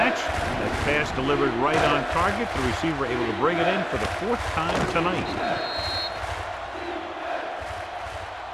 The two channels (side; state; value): both; identical; correlation 1.00